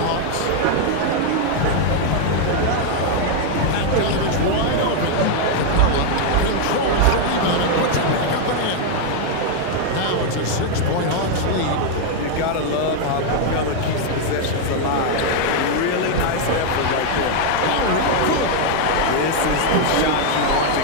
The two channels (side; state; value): both; different; correlation 0.00